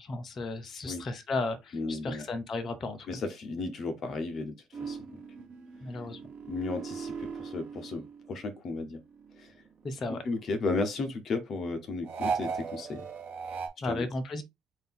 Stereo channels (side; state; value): both; normal; correlation 0.73